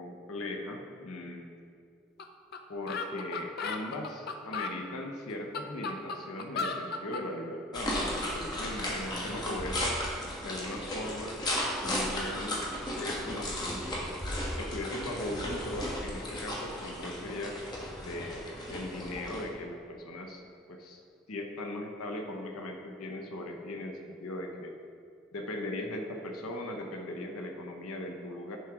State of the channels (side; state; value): both; normal; correlation 0.39